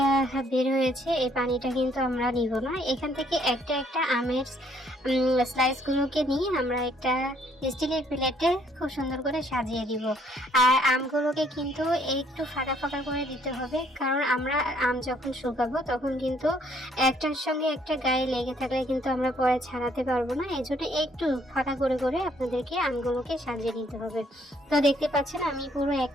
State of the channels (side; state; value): both; normal; correlation 0.66